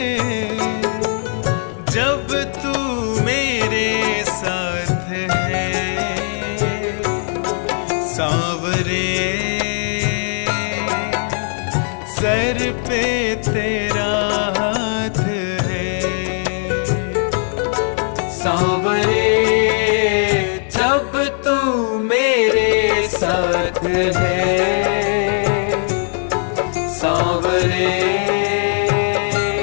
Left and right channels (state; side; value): silent; right; 56 dB below the other